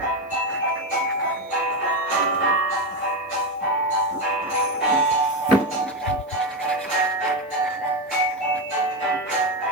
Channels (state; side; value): normal; both; correlation 0.12